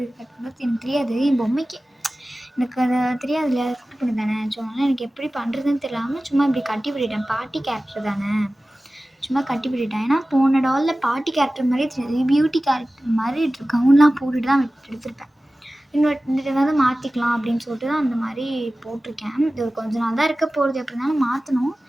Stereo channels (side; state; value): both; normal; correlation 0.96